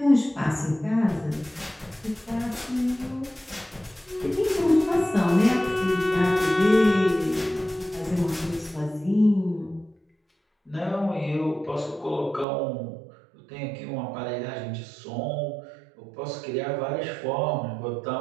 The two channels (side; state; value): left; drops out; at 12.5 s